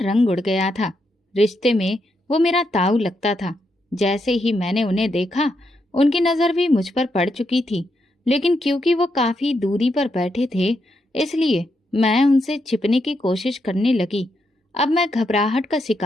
उड़ गया था। रिश्ते में वो मेरा ताऊ लगता था। जैसे ही मैंने उन्हें देखा, उनकी नज़र भी मुझ पर पड़ चुकी थी, लेकिन क्योंकि वो काफ़ी दूरी पर बैठे थे, इसलिए मैं उनसे छिपने की कोशिश करने लगी। अब मैं घबराहट का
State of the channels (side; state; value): both; normal; correlation 0.81